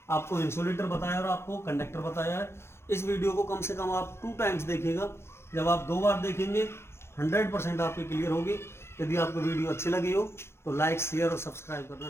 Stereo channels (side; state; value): right; late; 0.12 ms